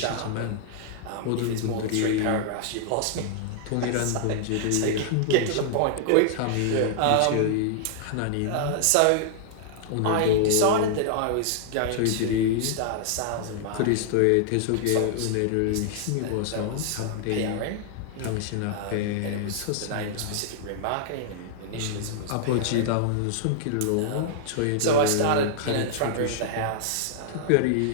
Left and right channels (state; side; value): different; both; correlation -0.01